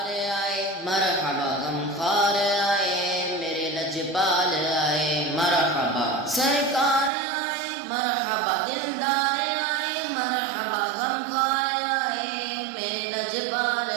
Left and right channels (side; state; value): left; drops out; at 7.1 s